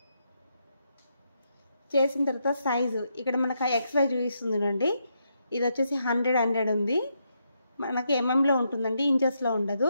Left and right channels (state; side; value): inverted; both; correlation -0.80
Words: చేసిన తర్వాత సైజు ఇక్కడ మనకు XY చూపిస్తుంది చూడండి. ఇది వచ్చేసి 100 ఉంది. మనకి ఎంఎంలో ఉంటుందండి, ఇంచెస్లో ఉండదు.